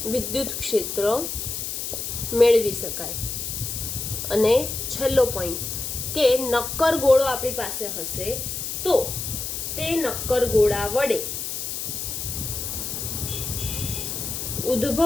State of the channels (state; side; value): noise; left; hiss, 4 dB below the sound